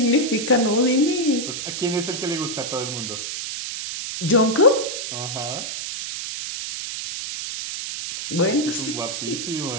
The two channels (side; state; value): right; noise; hiss, 5 dB below the sound